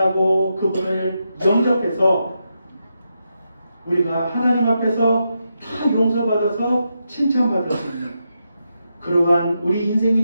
그분을 영접해서 우리가 하나님 앞에서 다 용서받아서 칭찬받을 수 있는 그러한 우리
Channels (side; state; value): both; inverted; correlation -0.85